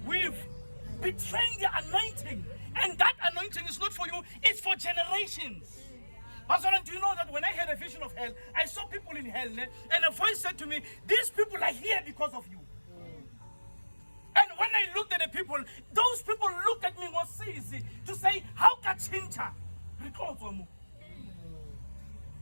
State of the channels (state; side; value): inverted; both; correlation -1.00